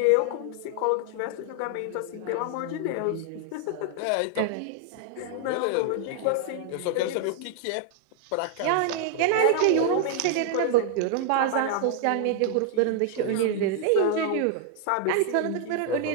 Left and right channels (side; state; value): both; different; correlation 0.00